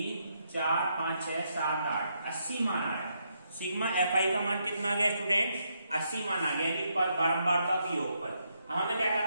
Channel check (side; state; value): both; inverted; correlation -0.78